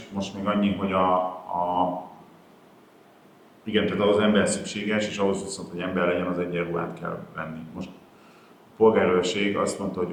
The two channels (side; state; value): both; identical; correlation 1.00